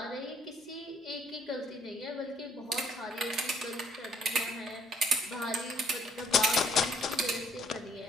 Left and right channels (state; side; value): normal; both; correlation 0.63